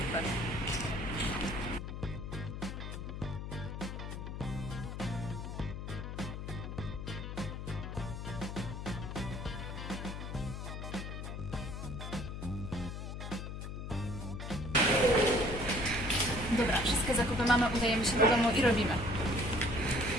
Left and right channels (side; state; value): left; noise; hum, 6 dB below the sound